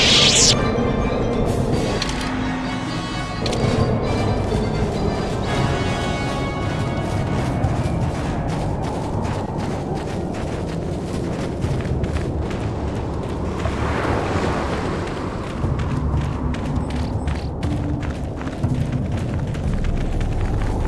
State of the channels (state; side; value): identical; both; correlation 1.00